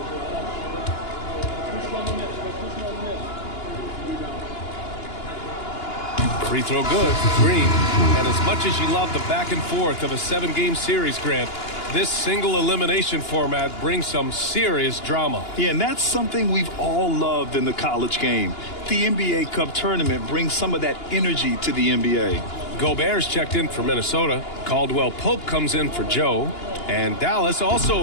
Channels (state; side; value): late; right; 2.9 ms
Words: Free throw good, Green. And as much as you love the back and forth of a 7-game series, Grant, this single elimination format brings some serious drama. Yeah, and that's something we've all loved in the college game. The NBA Cup tournament brings some of that energy to the NBA. Gobert's checked in for Minnesota. Caldwell Pope comes in for Joe. And Dallas also